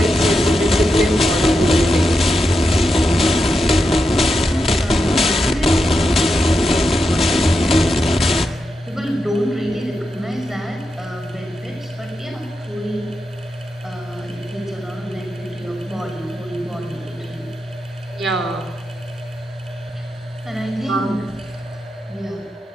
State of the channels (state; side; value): normal; both; correlation 0.87